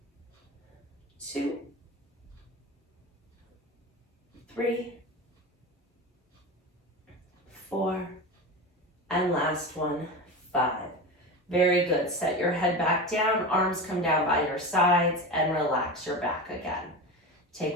2, 3, 4, and last one, 5. Very good. Set your head back down, arms come down by your sides, and relax your back again.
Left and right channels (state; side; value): normal; both; correlation 0.25